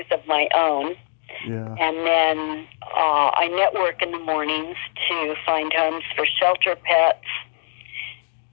of my own. Yeah. And then I network in the mornings to find homes for shelter pets.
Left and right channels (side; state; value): right; silent; digital silence